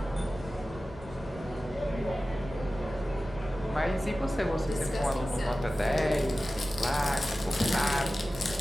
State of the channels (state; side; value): normal; both; correlation 0.95